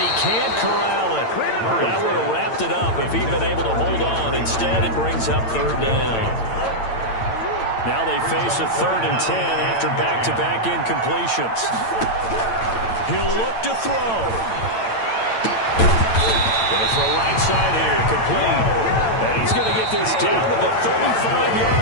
can't corral it. That would have wrapped it up if he'd been able to hold on. Instead, it brings up third down. Now they face a 3rd and 10 after back-to-back incompletions. He'll look to throw. Going to throw right side here, complete. And he's going to get this down to the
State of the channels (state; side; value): late; right; 8.9 ms